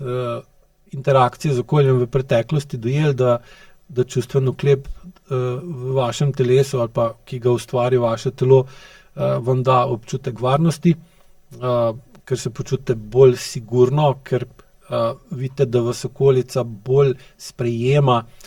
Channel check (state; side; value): identical; both; correlation 1.00